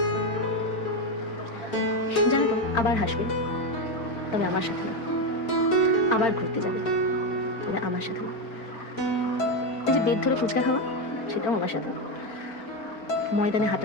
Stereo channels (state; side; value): late; right; 4.4 ms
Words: জানো তো, আবার হাসবে, তবে আমার সাথে না। আবার ঘুরতে যাবে, তবে আমার সাথে না। এই যে বেদ ধরে ফুচকা খাওয়া, সেটাও আমার সাথে না। ময়দানে